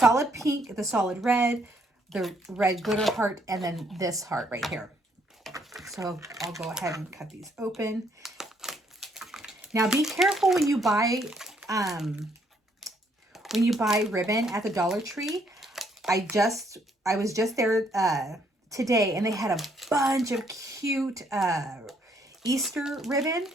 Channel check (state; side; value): normal; both; correlation 0.69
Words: pink, the solid red, the red glitter heart, and then this heart right here. So I'll go ahead and cut these open. Now, be careful when you buy ribbon at the Dollar Tree. I was just there today, and they had a bunch of cute Easter ribbon.